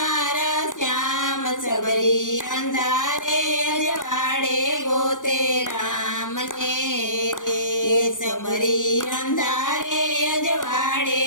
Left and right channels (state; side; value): late; right; 0.87 ms